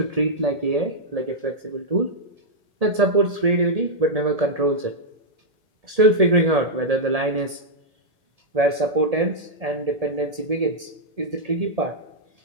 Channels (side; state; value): left; late; 1.7 ms